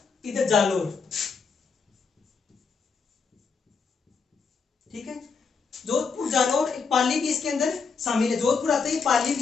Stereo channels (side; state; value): right; quieter; 5.3 dB